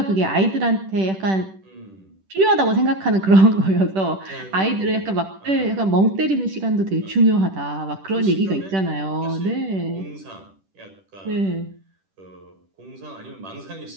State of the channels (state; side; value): late; left; 10 ms